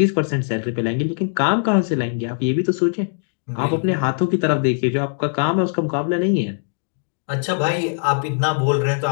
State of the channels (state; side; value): silent; right; digital silence